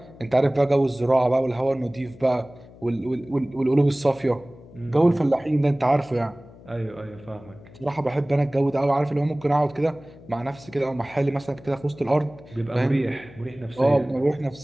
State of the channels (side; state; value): left; noise; hum, 21 dB below the sound